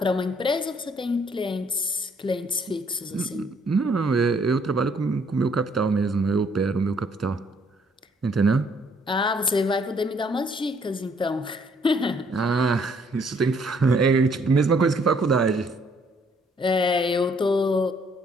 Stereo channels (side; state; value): both; normal; correlation 0.65